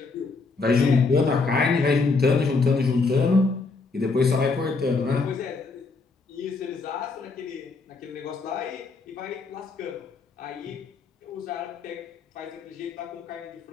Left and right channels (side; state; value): right; quieter; 4.0 dB